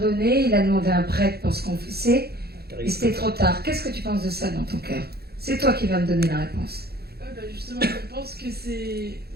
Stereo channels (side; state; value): left; late; 0.46 ms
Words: il a demandé un prêtre pour se confesser, et c'était trop tard. Qu'est-ce que tu penses de ça dans ton cœur? C'est toi qui vas me donner la réponse. Bah justement, je pense que c'est...